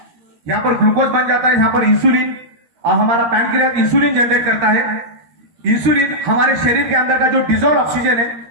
यहां पर ग्लूकोज बन जाता है, यहां पर इंसुलिन, और हमारा पैनक्रियास इंसुलिन जनरेट करता है। इंसुलिन हमारे शरीर के अंदर का जो डिजॉल्व ऑक्सीजन है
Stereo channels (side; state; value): left; late; 13 ms